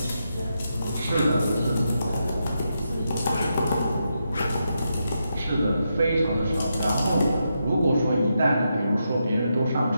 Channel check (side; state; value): both; inverted; correlation -0.84